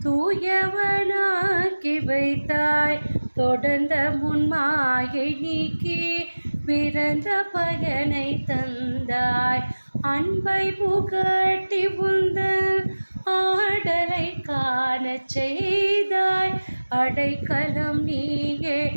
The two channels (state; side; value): inverted; both; correlation -1.00